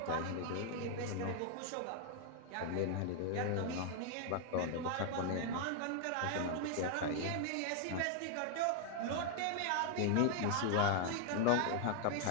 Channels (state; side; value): different; both; correlation 0.00